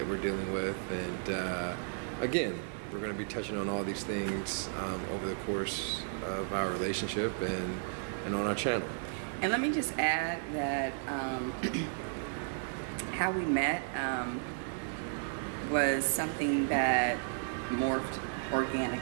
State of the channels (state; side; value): silent; left; digital silence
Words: we're dealing with, and again, we're going to be touching on all these things over the course of our relationship and on our channel. And let me just add that how we met was something that morphed